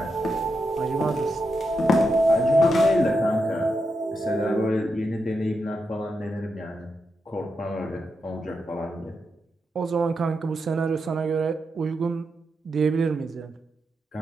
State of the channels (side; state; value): both; normal; correlation 0.85